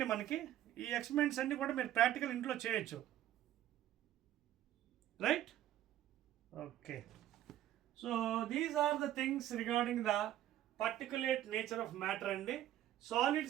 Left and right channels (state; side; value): quieter; left; 12.6 dB